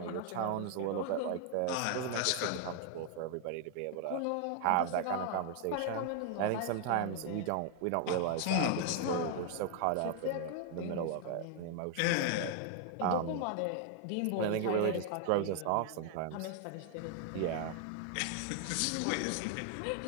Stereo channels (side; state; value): both; different; correlation 0.00